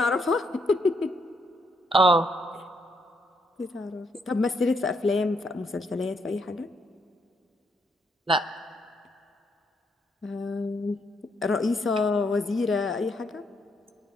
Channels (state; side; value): normal; both; correlation 0.74